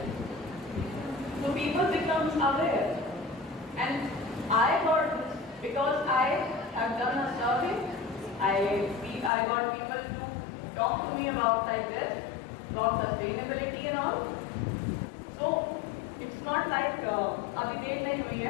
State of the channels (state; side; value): drops out; right; at 9.3 s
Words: So people become aware. And I got this because I have done a survey. I got people to talk to me about like this, about sustainability and all. So it's not like अभी देर नहीं हुई